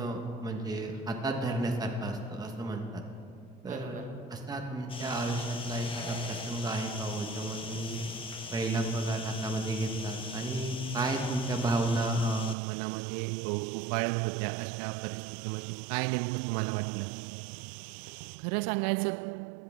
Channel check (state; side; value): drops out; left; at 12.6 s